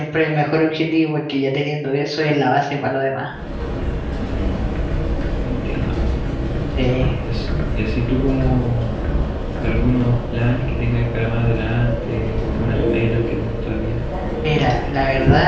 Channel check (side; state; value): both; identical; correlation 1.00